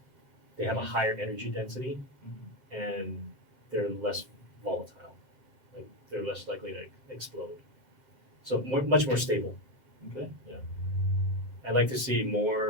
They have a higher energy density and they're less volatile. Like they're less likely to explode. So much more stable. Okay. I'd like to see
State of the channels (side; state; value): right; late; 2.1 ms